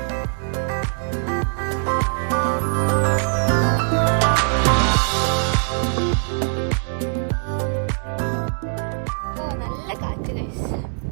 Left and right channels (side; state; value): left; silent; 64 dB below the other